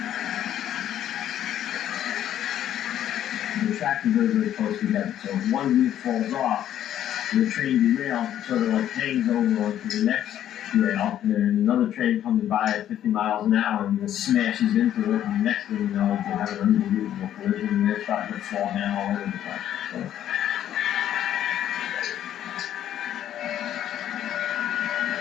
tracks are very, very close together. So if one wheel falls off, the train derails, it sort of like hangs over onto the next rail, and then another train comes by at 50 miles an hour and just smashes into it, and the next thing you know, they have an unbelievable collision, and they're starting to fall down all over the place. So,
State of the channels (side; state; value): right; quieter; 11.2 dB